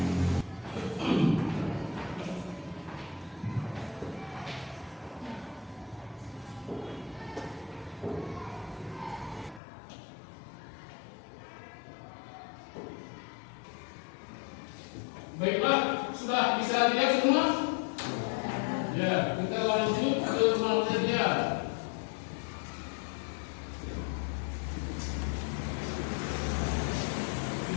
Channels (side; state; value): right; drops out; at 9.6 s